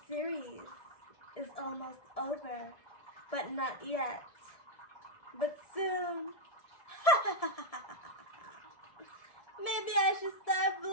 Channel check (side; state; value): right; late; 1.7 ms